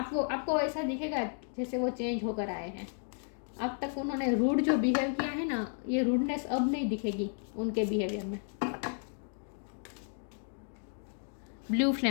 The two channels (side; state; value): right; silent; 56 dB below the other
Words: ऐसा दिखेगा जैसे वो चेंज होकर आए हैं। अब तक उन्होंने रूड जो बिहेव किया है ना, ये रूडनेस अब नहीं दिखेगी उनके बिहेवियर में। Blue